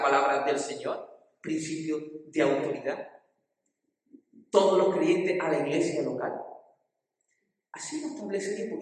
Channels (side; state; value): both; identical; correlation 1.00